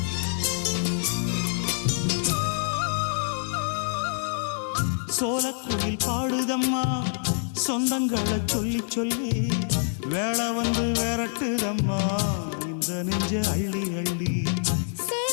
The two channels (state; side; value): silent; right; digital silence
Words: சோலக்குயில் பாடுதம்மா சொந்தங்களை சொல்லி சொல்லி வேளை வந்து விரட்டுதம்மா இந்த நெஞ்ச அள்ளி அள்ளி